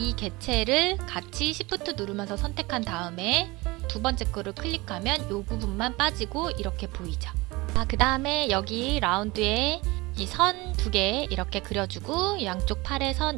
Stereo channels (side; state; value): left; quieter; 22.7 dB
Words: 개체를 같이 Shift 누르면서 선택한 다음에 두 번째 거를 클릭하면 이 부분만 빠지고 이렇게 보이죠. 그 다음에 여기 라운드에 이 선 두 개 이렇게 그려주고 양쪽 팔에 선